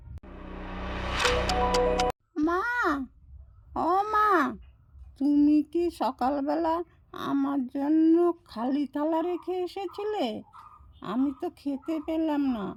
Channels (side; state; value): both; identical; correlation 1.00